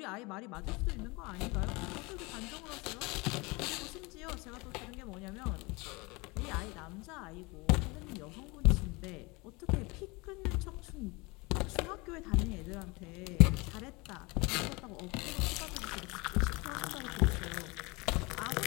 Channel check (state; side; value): quieter; right; 25.7 dB